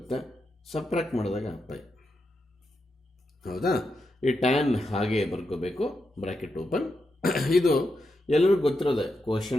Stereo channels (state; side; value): normal; both; correlation 0.85